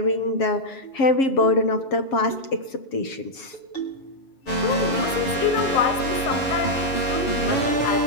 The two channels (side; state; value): right; late; 7.2 ms